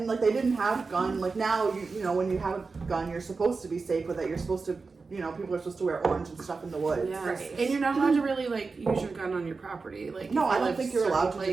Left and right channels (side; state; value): left; quieter; 4.3 dB